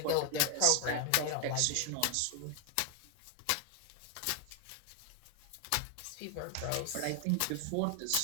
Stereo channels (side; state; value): both; different; correlation 0.00